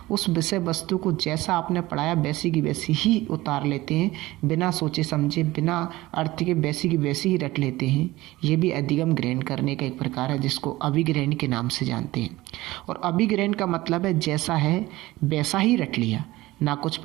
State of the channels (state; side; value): quieter; left; 18.4 dB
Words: उस विषय वस्तु को जैसा आपने पढ़ाया वैसी की वैसी ही उतार लेते हैं, बिना सोचे समझे, बिना अर्थ के वैसी की वैसी ही रट लेते हैं। ये भी अधिगम ग्रहण करने का एक प्रकार है जिसको अभिग्रहण के नाम से जानते हैं। और अभिग्रहण का मतलब है जैसा है वैसा ही रट लिया, ना कुछ